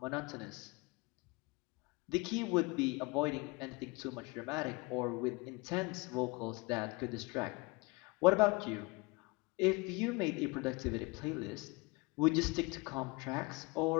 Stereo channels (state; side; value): quieter; right; 26.4 dB